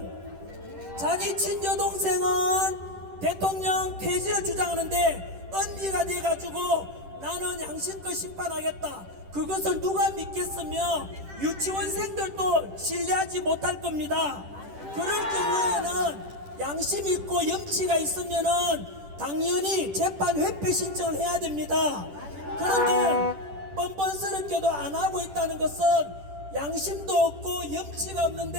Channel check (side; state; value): left; late; 10 ms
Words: 자기 친여동생은 대통령 퇴진을 주장하는데 언니가 돼가지고 나는 양심껏 심판하겠다. 그것을 누가 믿겠으며 유치원생들도 신뢰하지 못할 겁니다. 그럴 경우에는 양심 있고 염치가 있으면은 당연히 재판 회피 신청을 해야 됩니다. 그런데 뻔뻔스럽게도 안 하고 있다는 것은 양심도 없고 염치가